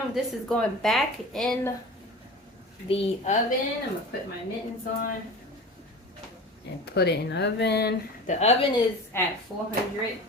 this is going back in the oven. I'm going to put my mittens on and put it in the oven. The oven is at 400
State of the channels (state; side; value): normal; both; correlation 0.34